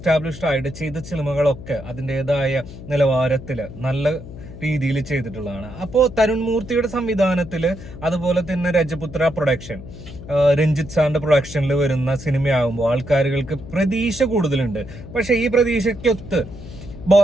ആയിട്ട് ചെയ്ത സിനിമകളൊക്കെ അതിൻ്റെതായ നിലവാരത്തില് നല്ല രീതിയിൽ ചെയ്തിട്ടുള്ളതാണ്. അപ്പോൾ തരുൺ മൂർത്തിയുടെ സംവിധാനത്തിൽ, അതുപോലെ തന്നെ രജപുത്ര പ്രൊഡക്ഷൻ, രഞ്ജിത്ത് സാറിന്റെ പ്രൊഡക്ഷനിൽ വരുന്ന സിനിമയാകുമ്പോൾ ആൾക്കാരുകൾക്ക് പ്രതീക്ഷ കൂടുതലുണ്ട്. പക്ഷെ ഈ പ്രതീക്ഷയ്ക്കൊത്ത്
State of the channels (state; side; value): noise; left; hum, 14 dB below the sound